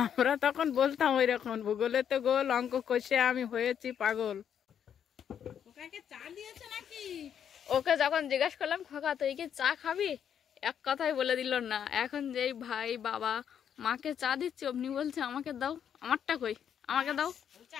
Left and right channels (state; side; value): quieter; right; 8.7 dB